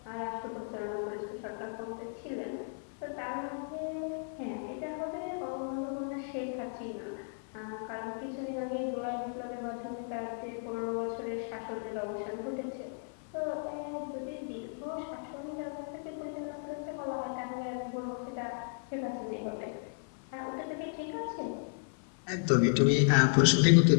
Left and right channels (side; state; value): right; silent; 55 dB below the other